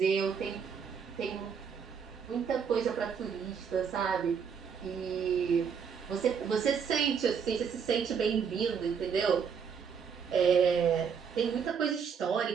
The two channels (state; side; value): quieter; left; 6.7 dB